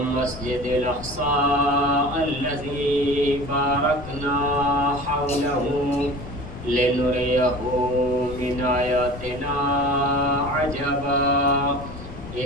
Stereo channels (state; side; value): noise; left; rumble, 14 dB below the sound